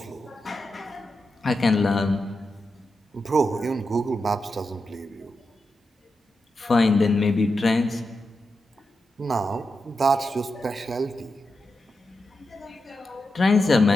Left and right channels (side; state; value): both; normal; correlation 0.88